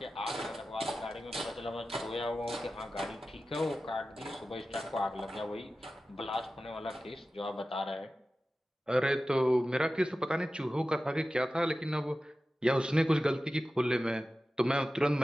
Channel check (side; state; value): both; normal; correlation 0.94